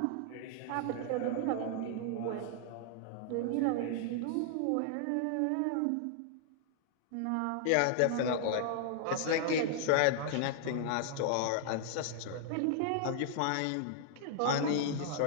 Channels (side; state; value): both; different; correlation -0.01